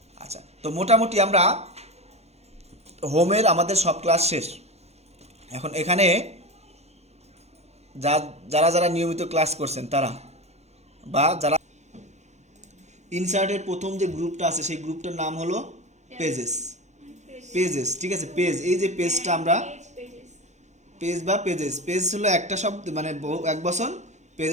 আচ্ছা, তো মোটামুটি আমরা হোমের আমাদের সব ক্লাস শেষ। এখন এখানে যারা যারা নিয়মিত ক্লাস করছেন তারা, বা যারা ইনসার্টের প্রথম যে গ্রুপটা আছে সেই গ্রুপটার নাম হলো পেজেস। পেজেস, ঠিক আছে, পেজ, এই যে পেজটা আমরা পেজ বা পেজেস, পেজ হলো একটা শব্দ মানে এক বচন,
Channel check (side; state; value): both; normal; correlation 0.23